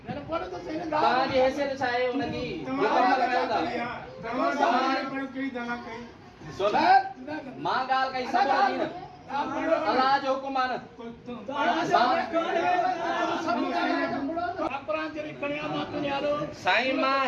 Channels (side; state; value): both; identical; correlation 1.00